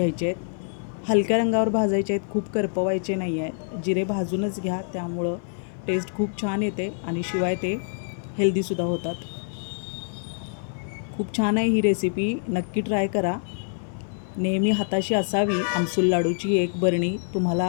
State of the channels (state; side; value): silent; right; 56 dB below the other